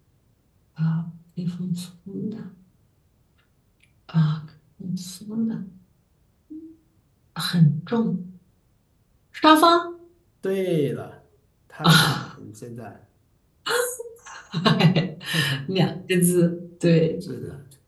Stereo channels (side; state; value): both; identical; correlation 1.00